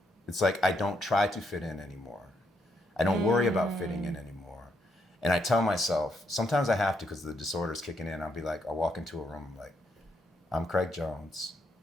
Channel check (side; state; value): both; normal; correlation 0.77